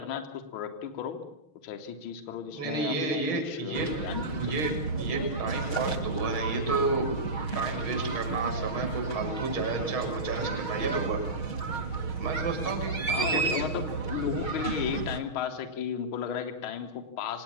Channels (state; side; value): late; right; 6.3 ms